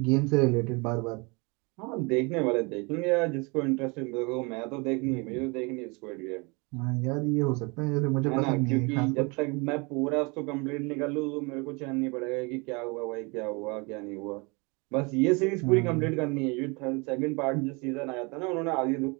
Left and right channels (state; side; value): quieter; left; 29.0 dB